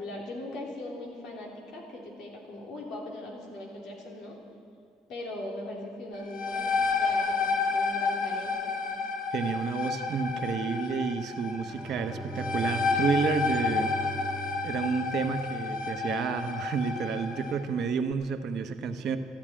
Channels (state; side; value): normal; both; correlation 0.61